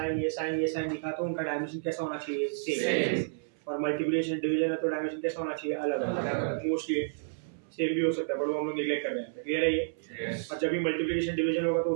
ये साइन ये साइन दिखा तो उनका डायमेंशन कैसा होना चाहिए, सेम। और मल्टीप्लिकेशन डिवीजन है तो डायमेंशन कैसा होना चाहिए, अलग अलग। मोस्टली सेम भी हो सकता है, बट वो हम लोग नेग्लेक्ट कर रहे हैं। क्लियर है ये? यस। और जब भी मल्टीप्लिकेशन डिवीजन होगा तो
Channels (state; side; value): silent; left; 57 dB below the other